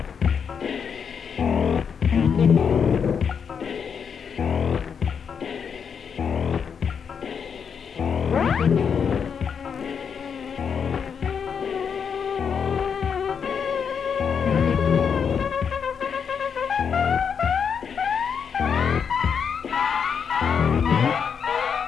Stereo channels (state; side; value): quieter; right; 6.8 dB